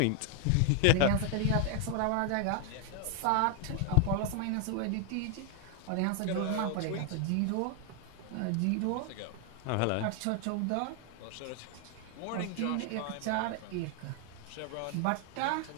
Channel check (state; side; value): different; both; correlation 0.01